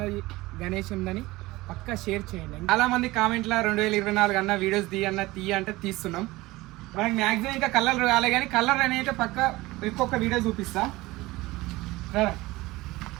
గణేష్ ఉందని పక్కా షేర్ చేయండి. చాలా మంది కామెంట్లో 2024 అన్న వీడియోస్ తీయ అంటే తీస్తున్నాం. మనకి మ్యాక్సిమం ఇంకా కలర్ రాలే కానీ కలర్ అనేది పక్క ఇంకొక వీడియో చూపిస్తా.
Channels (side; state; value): left; quieter; 19.8 dB